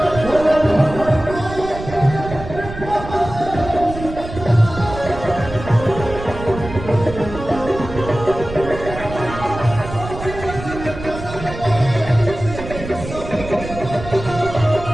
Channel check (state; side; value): noise; right; rumble, 10 dB below the sound